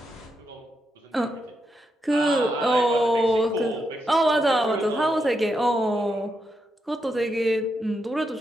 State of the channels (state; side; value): normal; both; correlation 0.83